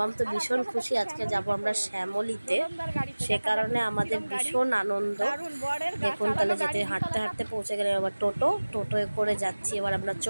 তো ভীষণ খুশি, আজকে যাব আমরা শ্যামলীতে। সে কারণে আমাদের ভীষণ আনন্দ। দেখুন, তাহলে যেতে হাঁটতে হাঁটতে পৌঁছে গেলে আবার টোটোয় করে যাচ্ছি। এবার আমরা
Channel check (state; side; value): inverted; both; correlation -1.00